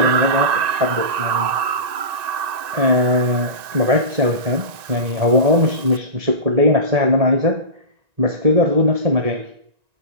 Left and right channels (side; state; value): left; late; 1.9 ms